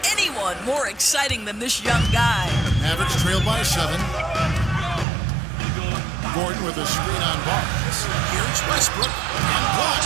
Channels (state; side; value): drops out; left; at 5.1 s